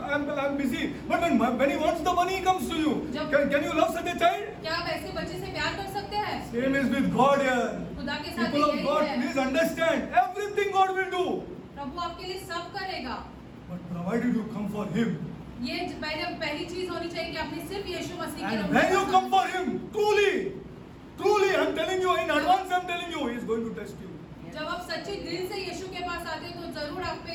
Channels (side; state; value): both; identical; correlation 1.00